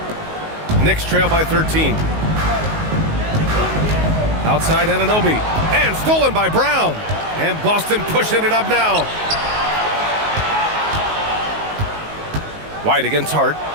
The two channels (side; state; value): left; late; 19 ms